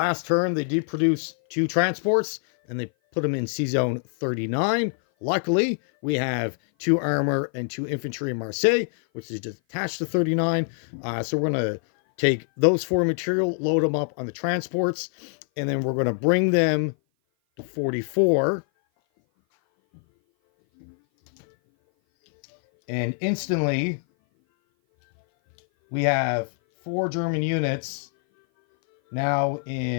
turn, they did produce 2 transports, and they put them in Sea Zone 39. Luckily, we have 2 armor and 2 infantry in Marseille, which is just attached to 39. So we're going to take those 4 material, load them up on the transports, and then we're going to bring them to 44. And instantly, we have 4 German units now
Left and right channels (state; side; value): silent; right; 57 dB below the other